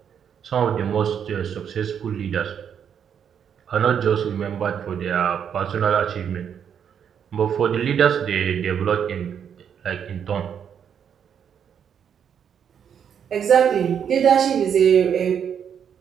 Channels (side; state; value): left; quieter; 8.1 dB